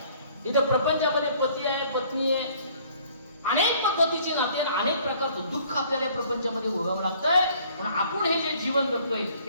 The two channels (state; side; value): inverted; both; correlation -0.57